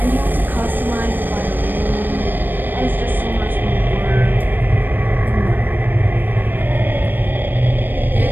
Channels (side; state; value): left; late; 0.092 ms